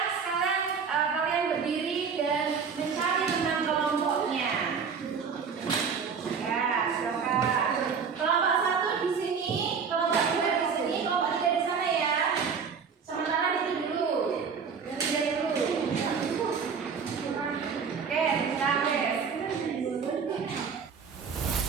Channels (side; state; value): left; quieter; 6.1 dB